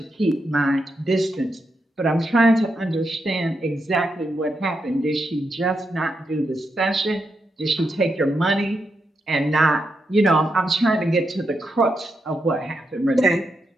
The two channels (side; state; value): both; normal; correlation 0.84